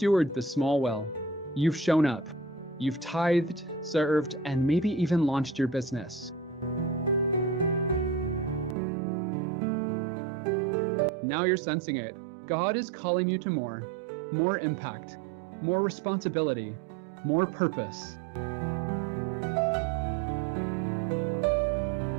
the small well. You've shown up. You've tithed, served, and maybe even launched your business. Now you're sensing it. God is calling you to more impact, more responsibility, more purpose.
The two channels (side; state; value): left; drops out; at 8.8 s